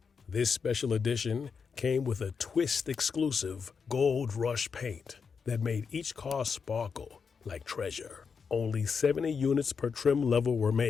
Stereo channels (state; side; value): quieter; right; 5.8 dB